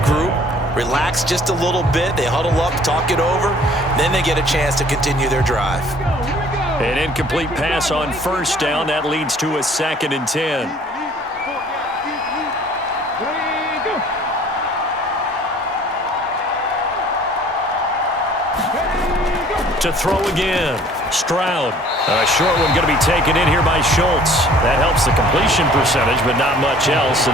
relax just a little bit. They huddle up, talk it over. Then they get a chance to continue their drive. An incomplete pass on 1st down. That leads to a 2nd and 10. To throw again. Stroud. A short one going to be taken in here by Schultz. That helps the completion percentage, but not much else,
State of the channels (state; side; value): normal; both; correlation 0.54